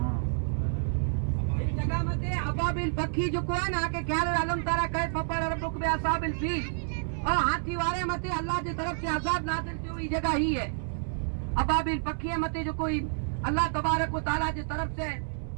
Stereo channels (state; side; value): silent; left; 58 dB below the other